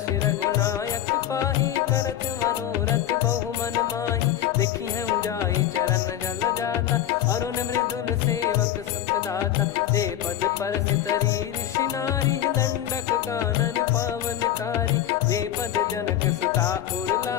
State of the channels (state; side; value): quieter; right; 11.4 dB